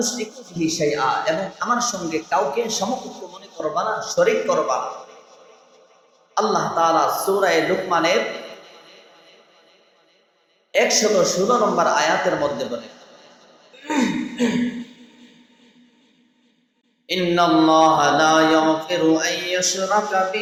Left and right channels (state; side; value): identical; both; correlation 1.00